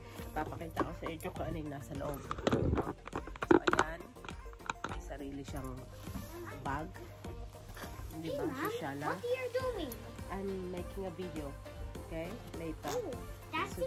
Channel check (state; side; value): identical; both; correlation 1.00